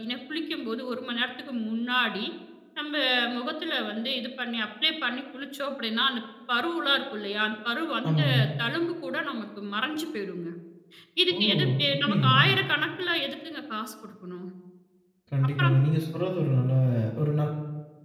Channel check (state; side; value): identical; both; correlation 1.00